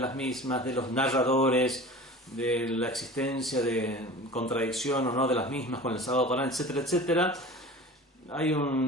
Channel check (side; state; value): both; normal; correlation 0.38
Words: mismas, de los narradores, de la existencia de contradicción o no de las mismas con el Sagrado Corán, etcétera, etcétera. Hay